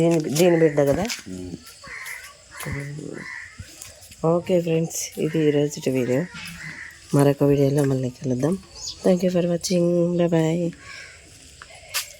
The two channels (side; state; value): both; identical; correlation 1.00